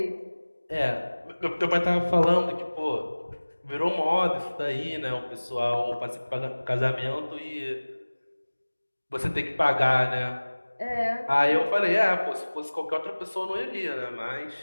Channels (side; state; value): both; inverted; correlation -1.00